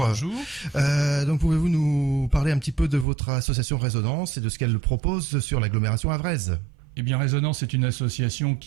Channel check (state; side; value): drops out; left; at 3.1 s